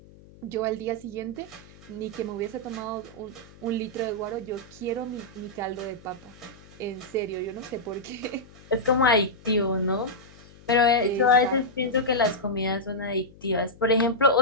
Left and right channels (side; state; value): left; noise; hum, 23 dB below the sound